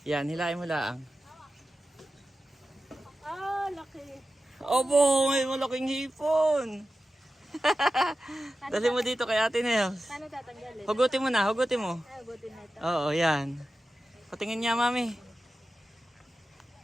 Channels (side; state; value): both; normal; correlation 0.93